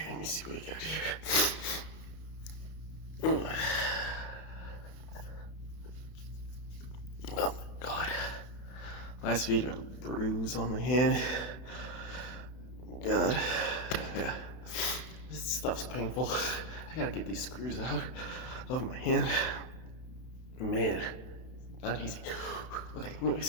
let me see what we got here. Oh my god. Last video, I had a bruise on my hand. God. Yeah. This stuff's painful. I gotta get these screws out of my hand. Man, not easy. Okay,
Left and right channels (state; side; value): late; right; 32 ms